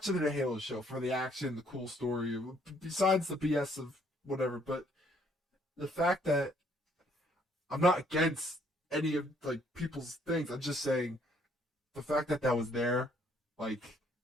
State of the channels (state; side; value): normal; both; correlation 0.65